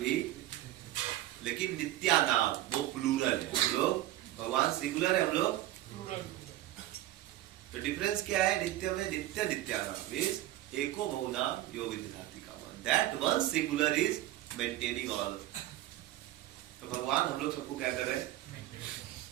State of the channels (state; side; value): quieter; left; 14.8 dB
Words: लेकिन नित्यानाम वो प्लूरल है, हम लोग भगवान सिंगुलर है, हम लोग तो डिफरेंस क्या है? नित्य में नित्य नित्यानाम मींस एको बहुनाम योग विदधाति कामः, that one singular is maintaining all. तो भगवान हम लोग सबको क्या कर रहे हैं?